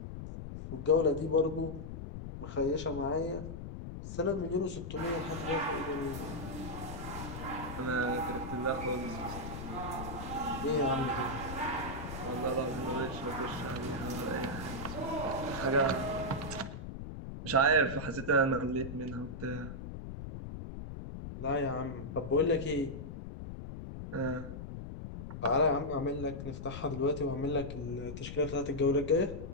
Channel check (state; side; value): noise; left; rumble, 8 dB below the sound